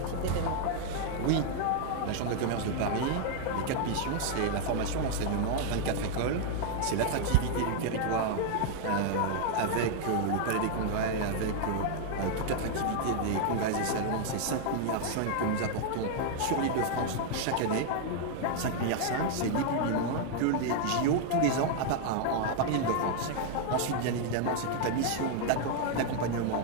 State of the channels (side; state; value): both; different; correlation 0.00